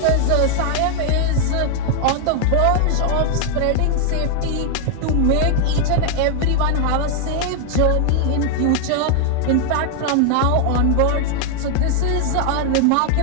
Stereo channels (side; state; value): both; different; correlation 0.00